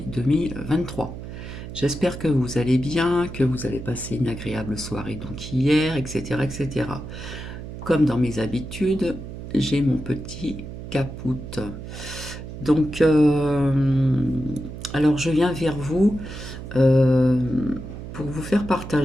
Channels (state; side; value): noise; right; hum, 10 dB below the sound